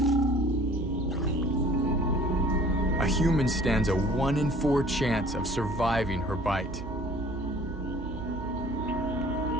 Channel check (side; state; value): right; noise; hum, 10 dB below the sound